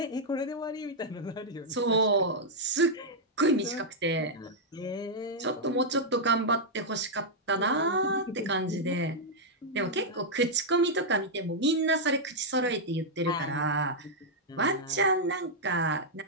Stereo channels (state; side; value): normal; both; correlation -0.05